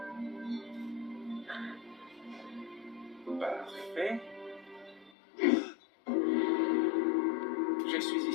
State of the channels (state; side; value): drops out; right; at 5.1 s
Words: Parfait. Je suis